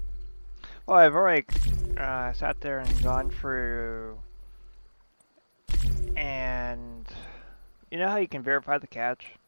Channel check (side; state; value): both; inverted; correlation -1.00